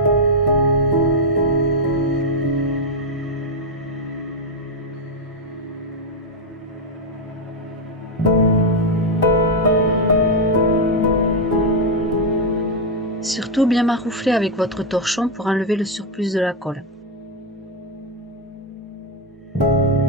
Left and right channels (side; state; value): both; normal; correlation 0.03